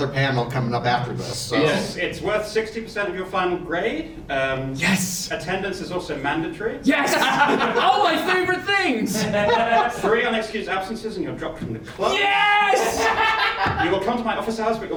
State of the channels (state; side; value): identical; both; correlation 1.00